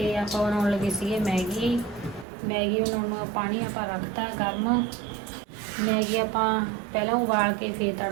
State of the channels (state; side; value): drops out; left; at 2.2 s